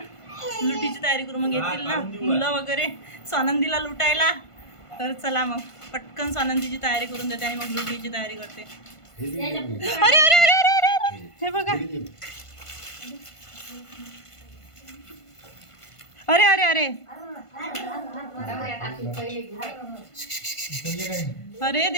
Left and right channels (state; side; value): late; right; 1.5 ms